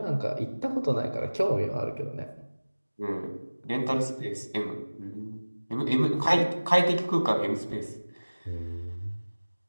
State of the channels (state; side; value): inverted; both; correlation -1.00